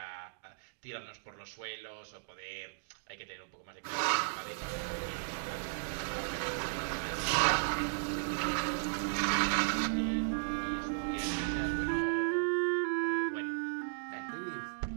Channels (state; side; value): silent; left; digital silence